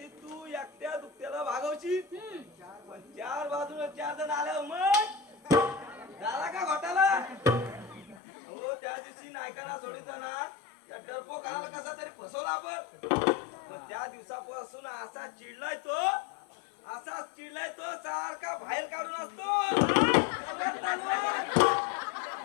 तू एकट्या दुखत्याला भागवशील पण चार बाजूला 4 जण आल्यावर मग झाला का घोटाला? हो त्या दिवशी नायकांना सोडिताना त्या डरपोकाला कसा तरी फसवला आपण. पण त्या दिवसापासून असाच चिडलाय तो सारखा बाहेर काढून असतो.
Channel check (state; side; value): drops out; right; at 8.2 s